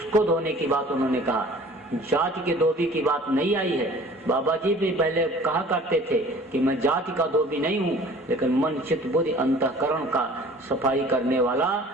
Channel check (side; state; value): both; normal; correlation 0.48